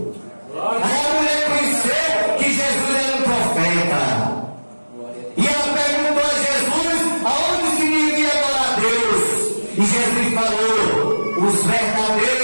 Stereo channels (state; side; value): inverted; both; correlation -1.00